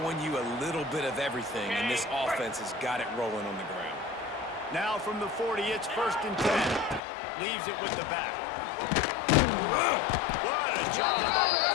you a little bit of everything, and this offense has got it rolling on the ground. Now from the 40, it's first and 10. Leaves it with the back. What a job up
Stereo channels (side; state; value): right; drops out; at 7.0 s